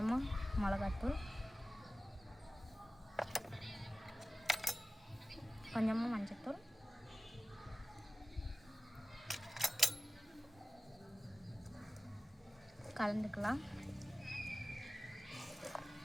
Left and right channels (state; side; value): normal; both; correlation 0.96